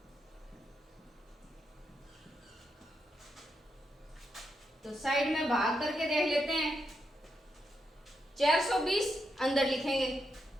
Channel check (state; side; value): normal; both; correlation 0.83